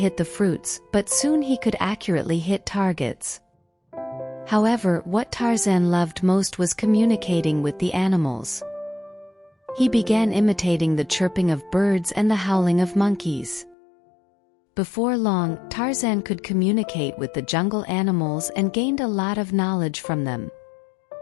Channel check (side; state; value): right; drops out; at 13.8 s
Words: the fruits, but soon he could accurately hit targets. However, what Tarzan loved most was communicating with the animals. He began imitating the chirping of birds and the howling of monkeys. Before long, Tarzan could communicate with the jungle animals and gained a lot of knowledge from them.